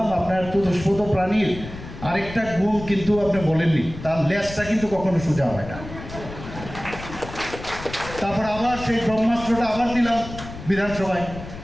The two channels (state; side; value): noise; left; rumble, 12 dB below the sound